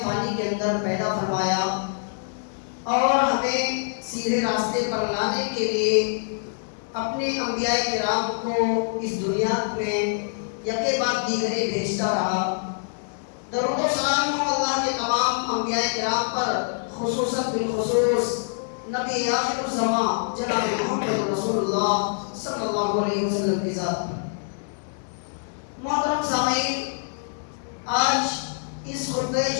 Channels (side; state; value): right; silent; 62 dB below the other